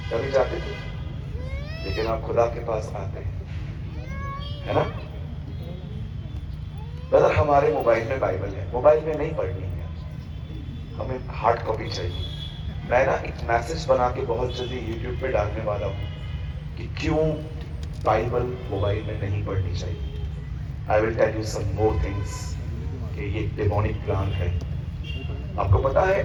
जाते थे? लेकिन आप खुदा के पास आते हैं, है ना? ब्रदर, हमारे मोबाइल में बाइबल है, मोबाइल में नहीं पढ़नी है, हमें हार्ड कॉपी चाहिए। मैं ना एक मैसेज बना के बहुत जल्दी यूट्यूब पे डालने वाला हूं कि क्यों बाइबल मोबाइल में नहीं पढ़नी चाहिए। I will tell you some more things कि ये डेमोनिक प्लान है। आपको पता है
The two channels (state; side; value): identical; both; correlation 1.00